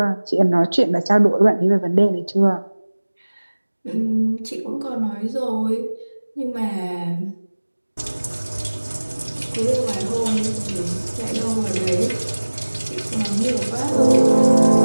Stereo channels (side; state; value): both; inverted; correlation -1.00